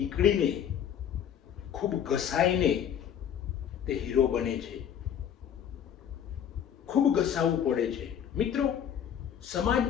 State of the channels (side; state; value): right; quieter; 9.1 dB